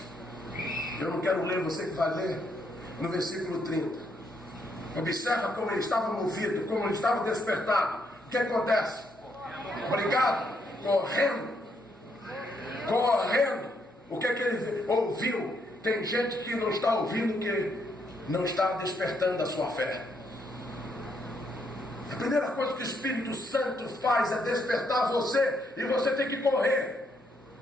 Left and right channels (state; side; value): normal; both; correlation 0.75